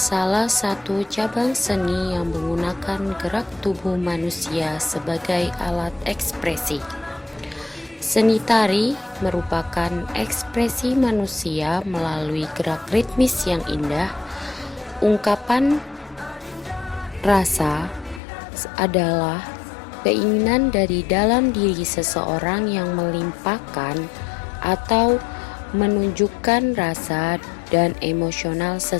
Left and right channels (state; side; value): drops out; right; at 18.2 s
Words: satu cabang seni yang menggunakan gerak tubuh manusia sebagai alat ekspresi. Seni tari merupakan ekspresi manusia melalui gerak ritmis yang indah. Ungkapan rasa adalah keinginan dari dalam diri seseorang yang melimpahkan atau menunjukkan rasa dan emosional